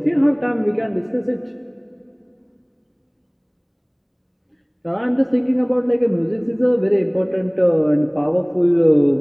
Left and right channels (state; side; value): identical; both; correlation 1.00